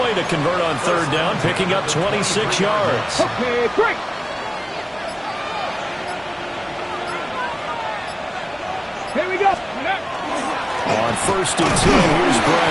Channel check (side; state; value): both; identical; correlation 1.00